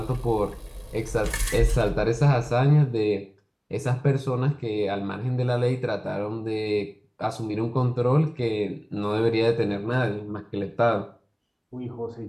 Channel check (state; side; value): identical; both; correlation 1.00